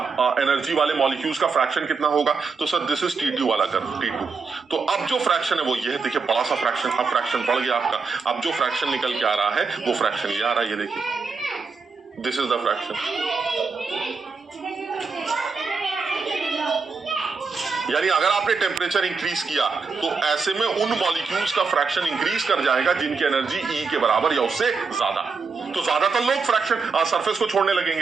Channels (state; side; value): quieter; left; 4.9 dB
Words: एनर्जी वाले मॉलिक्यूल्स का फ्रैक्शन कितना होगा? तो सर दिस इज T2 वाला कर्व, T2। तो अब जो फ्रैक्शन है वो ये है, देखिए बड़ा सा फ्रैक्शन, अब फ्रैक्शन बढ़ गया आपका। अब जो फ्रैक्शन निकल के आ रहा है वो फ्रैक्शन ये आ रहा है, ये देखिए, दिस इज द फ्रैक्शन। यानी अगर आपने टेम्परेचर इंक्रीज किया तो ऐसे में उन मॉलिक्यूल्स का फ्रैक्शन इंक्रीज कर जाएगा जिनकी एनर्जी E के बराबर या उससे ज्यादा। तो ज्यादातर लोग फ्रैक्शन सरफेस को छोड़ने